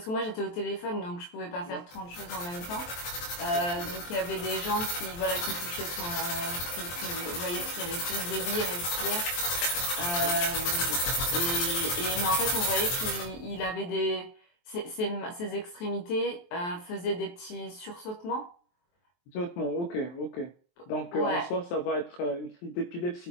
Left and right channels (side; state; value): right; late; 23 ms